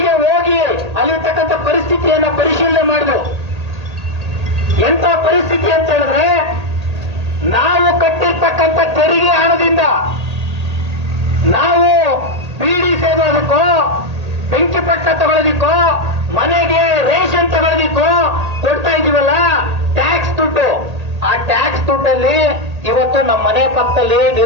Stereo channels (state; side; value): late; left; 1.8 ms